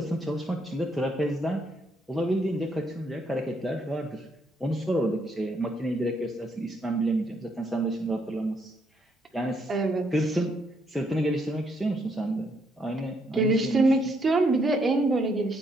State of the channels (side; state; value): both; normal; correlation 0.73